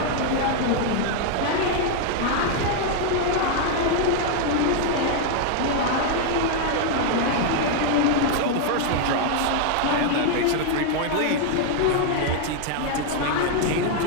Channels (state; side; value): different; both; correlation 0.00